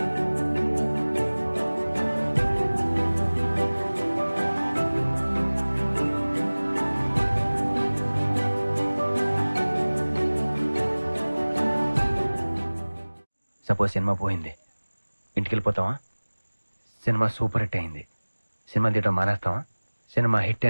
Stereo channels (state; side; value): inverted; both; correlation -1.00